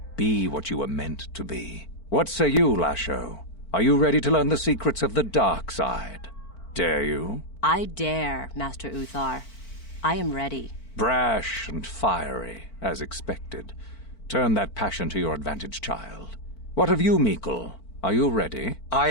Be what you were meant to be. What say you, Lasho? Are you ready to learn the secrets of the dark side? Dare you? I dare, Master Uthar. I am ready. Brash and fiery, as expected. Turn that passion to your advantage, child. What of you, Meekle? Are you ready? I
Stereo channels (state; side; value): late; right; 4.5 ms